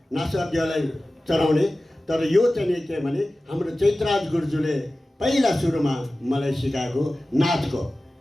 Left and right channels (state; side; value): normal; both; correlation 0.96